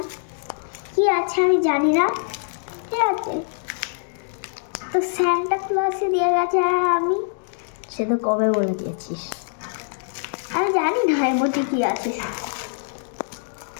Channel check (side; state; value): right; silent; digital silence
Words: কি আছে আমি জানি না, ঠিক আছে। তো স্যান্টা ক্লসে দিয়ে গেছে, আর আমি সে তো কবে বলে দিয়েছিস। আমি জানি না এর মধ্যে কি আছে।